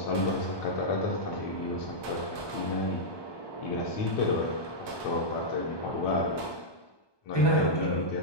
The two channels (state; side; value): late; right; 1.2 ms